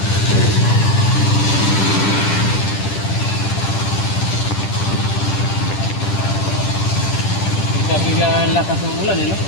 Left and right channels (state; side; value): late; right; 10 ms